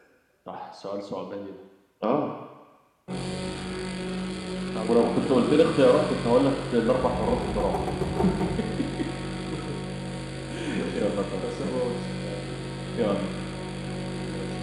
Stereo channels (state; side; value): identical; both; correlation 1.00